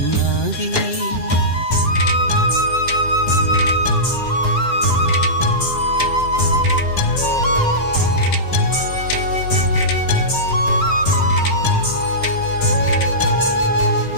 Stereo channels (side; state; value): right; late; 7.7 ms